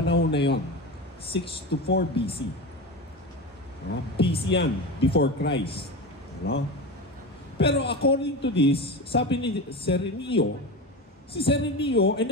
na yon, 6 to 4 BC. BC yan, before Christ. No? Pero according to this, sabi ni Serenio, si Serenio ay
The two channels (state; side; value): normal; both; correlation 0.24